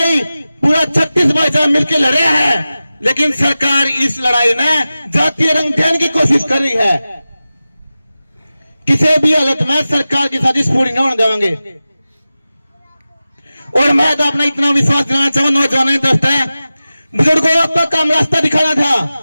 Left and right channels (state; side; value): inverted; both; correlation -0.95